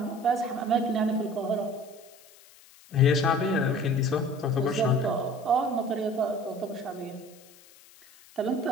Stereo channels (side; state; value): left; noise; hiss, 25 dB below the sound